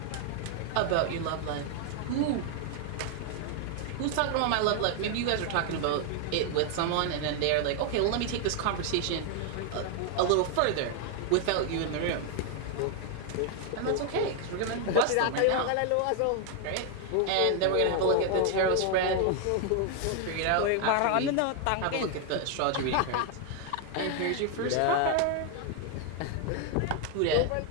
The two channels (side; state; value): both; different; correlation 0.00